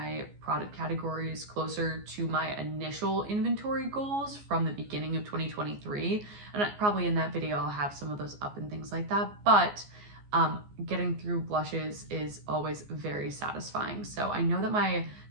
product categories closer to my initial inventory goals from the beginning of 2023. And probably in that video, I'll have some of those up and things like that. But getting through blushes is always very satisfying. So I know that my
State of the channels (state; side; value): late; left; 14 ms